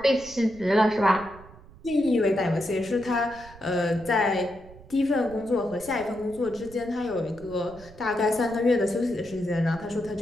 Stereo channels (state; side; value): noise; right; rumble, 20 dB below the sound